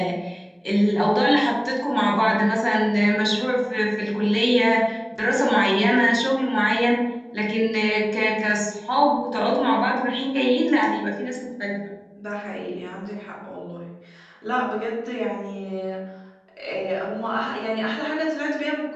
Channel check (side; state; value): both; identical; correlation 1.00